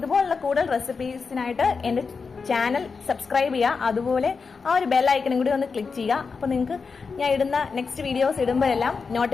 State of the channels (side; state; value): right; quieter; 5.0 dB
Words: കൂടുതൽ റെസിപ്പീസിനായിട്ട് എന്റെ ചാനൽ സബ്സ്ക്രൈബ് ചെയ്യുക. അതുപോലെ ആ ഒരു ബെൽ ഐക്കണും കൂടി ഒന്ന് ക്ലിക്ക് ചെയ്യുക. അപ്പൊ നിങ്ങൾക്ക് ഞാൻ ഇടുന്ന നെക്സ്റ്റ് വീഡിയോസ് ഇടുമ്പോഴെല്ലാം